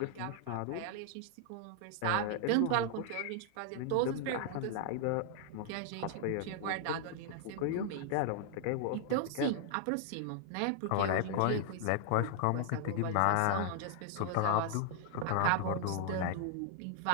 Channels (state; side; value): different; both; correlation -0.01